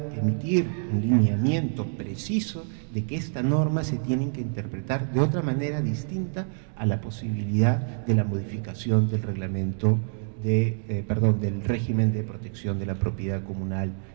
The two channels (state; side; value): silent; left; 60 dB below the other